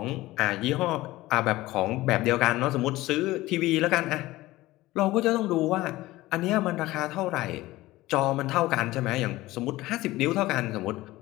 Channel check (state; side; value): quieter; right; 17.9 dB